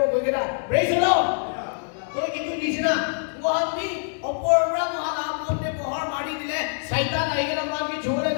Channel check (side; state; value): right; silent; digital silence